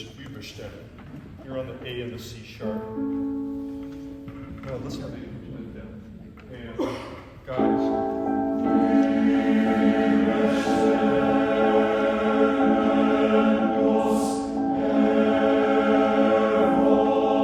Überstimme, you're on the A and the C sharp. Now let's have the instrument down. And guys.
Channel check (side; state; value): both; identical; correlation 1.00